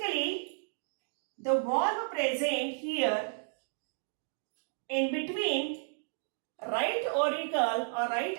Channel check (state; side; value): silent; left; digital silence